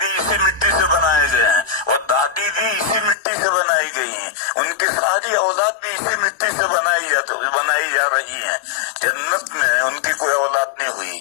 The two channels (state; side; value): drops out; right; at 3.2 s